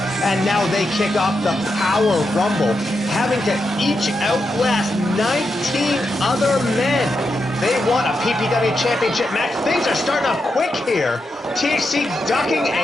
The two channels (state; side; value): normal; both; correlation 0.86